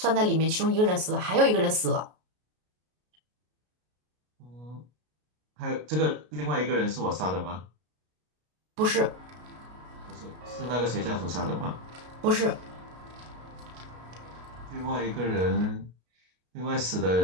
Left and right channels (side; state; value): left; late; 33 ms